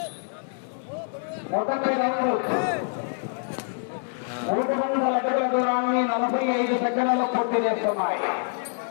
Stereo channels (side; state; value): right; silent; 61 dB below the other